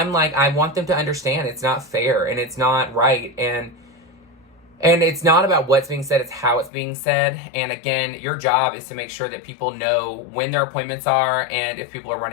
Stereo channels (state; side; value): drops out; right; at 6.7 s